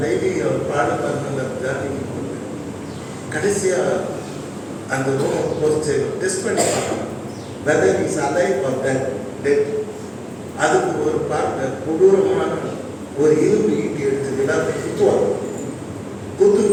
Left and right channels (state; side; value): identical; both; correlation 1.00